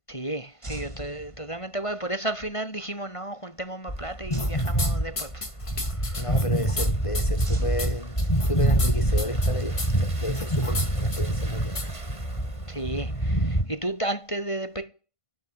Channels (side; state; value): right; late; 1.5 ms